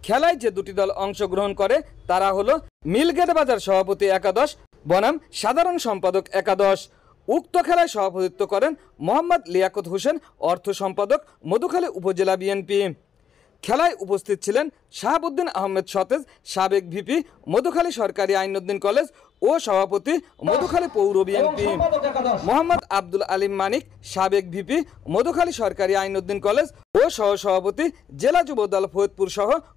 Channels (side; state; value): right; quieter; 8.0 dB